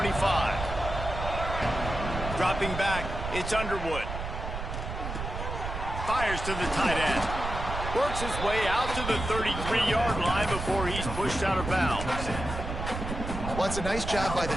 Dropping back, it's Underwood. Fires to the tight end. Works his way out to the 33-yard line before he's pushed out of bounds. Well, it's a nice job by the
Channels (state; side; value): noise; right; rumble, 6 dB below the sound